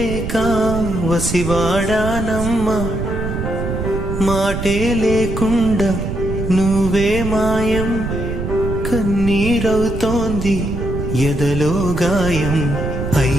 వసివాడానమ్మ మాటే లేకుండా నువ్వే మాయం కన్నీరవుతోంది ఎదలో గాయం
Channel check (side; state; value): right; noise; rumble, 4 dB below the sound